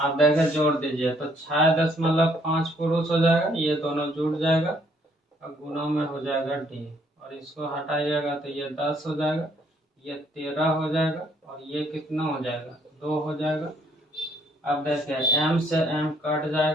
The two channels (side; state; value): both; normal; correlation 0.67